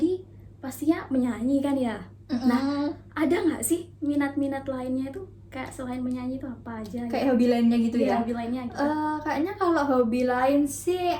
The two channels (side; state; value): both; identical; correlation 1.00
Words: pastinya menyanyi kan ya? Nah, ada nggak sih minat-minat lainnya itu kayak selain menyanyi itu apa aja? Kayak hobi lainnya gitu Iya, ya. hobi lainnya gitu. Kayaknya kalau hobi lain sih